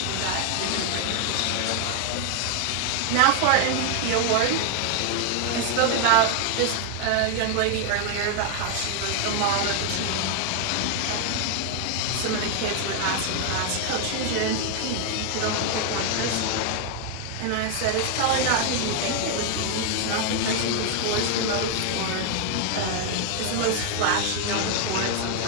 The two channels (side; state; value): both; different; correlation 0.00